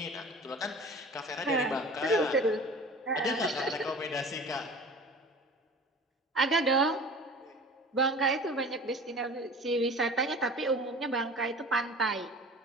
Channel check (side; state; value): both; normal; correlation 0.41